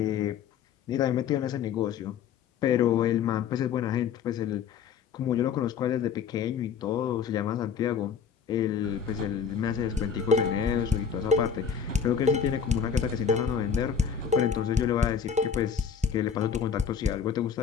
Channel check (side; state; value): right; quieter; 7.1 dB